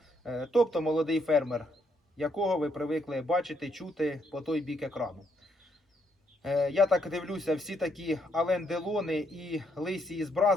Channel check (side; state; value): both; normal; correlation 0.74